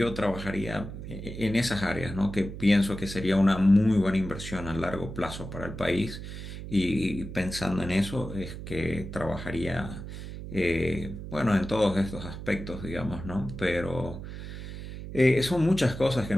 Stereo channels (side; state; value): right; noise; hum, 9 dB below the sound